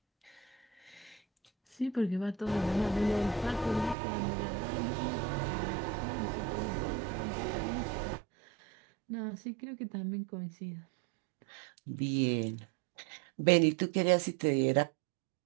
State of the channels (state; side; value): drops out; left; at 4.0 s